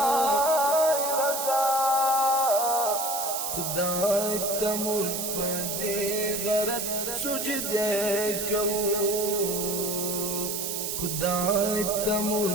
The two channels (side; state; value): right; noise; hiss, 3 dB below the sound